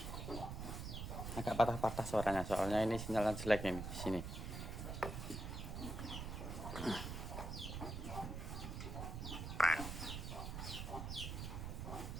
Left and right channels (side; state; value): right; noise; rumble, 5 dB below the sound